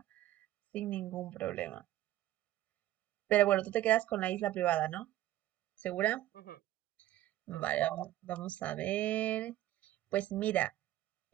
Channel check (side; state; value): left; quieter; 14.1 dB